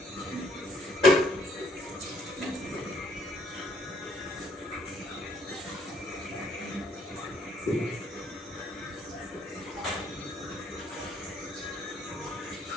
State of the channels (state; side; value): normal; both; correlation 0.67